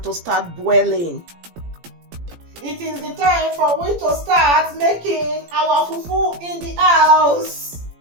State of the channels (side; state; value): left; late; 17 ms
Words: to start boiling. It is the time for we to start making our fufu in the house.